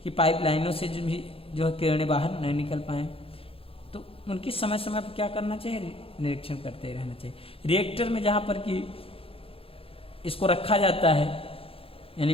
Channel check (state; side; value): late; right; 0.27 ms